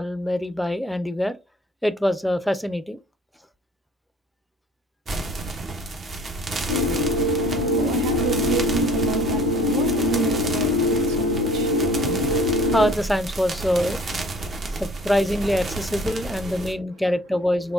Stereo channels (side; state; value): both; normal; correlation 0.54